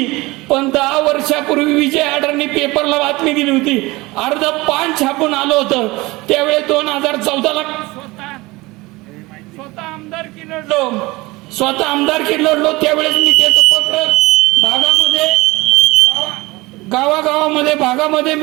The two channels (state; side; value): quieter; left; 21.7 dB